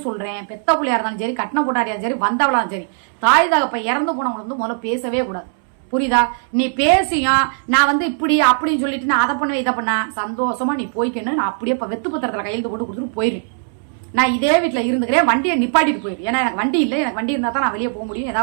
சொல்றேன், பெத்த பிள்ளையா இருந்தாலும் சரி, கட்டின போட்டாரியா சரி, வந்தவளாலும் சரி, தாய் தகப்ப இறந்து போனவங்க வந்து முதல்ல பேசவே கூடாது. புரியுதா? நீ பேசியும் நான் வந்து இப்படி அப்படின்னு சொல்லிட்டு நான் அதை பண்ணுவேன் இதை பண்ண, சந்தோஷமா நீ போய்க்கணும். நான் அப்படியே வெத்து பத்திரத்துல கையெழுத்து போட்டு கொடுத்துட்டு போயிடுறேன். நான் இதே வீட்டுல இருந்துக்கிறேன், வண்டியை நிப்பாட்டிட்டு போயிரு. ஏன்னா எனக்கு வண்டி இல்லை, எனக்கு வண்டி இருந்தா தான் நான் வெளியே போக முடியும்,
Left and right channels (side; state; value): left; silent; 66 dB below the other